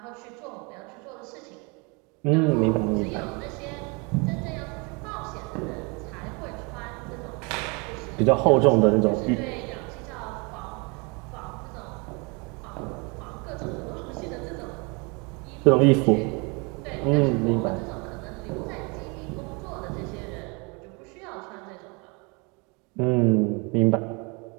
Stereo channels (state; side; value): quieter; left; 30.4 dB